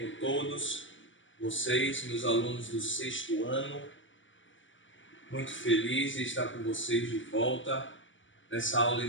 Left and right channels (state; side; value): late; right; 0.56 ms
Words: todos? Vocês, meus alunos do 6º ano, muito feliz de estar com vocês de volta nessa aula